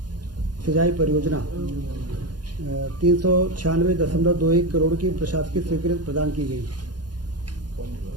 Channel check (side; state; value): left; late; 0.70 ms